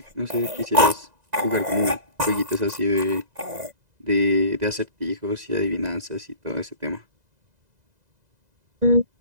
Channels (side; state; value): left; late; 2.0 ms